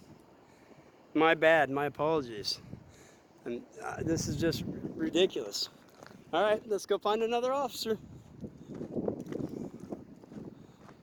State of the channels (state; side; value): identical; both; correlation 1.00